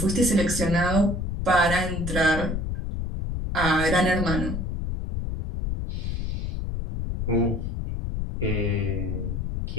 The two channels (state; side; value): noise; left; rumble, 3 dB below the sound